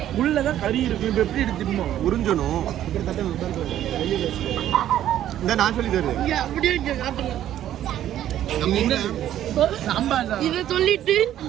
உள்ளதான் கறி இருக்கும். இப்போ எப்படி எடுத்துக்கணும்? உறிஞ்சணும். இந்த நான் சொல்லி தருவேன். இங்க அப்படியே இங்க காட்டுங்க. நம்ம என்ன சாம்பார் தான். இதை சொல்லிட்டு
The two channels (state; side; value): quieter; left; 11.8 dB